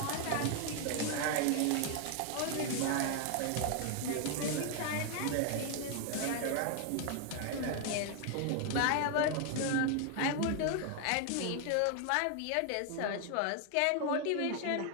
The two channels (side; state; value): both; different; correlation 0.00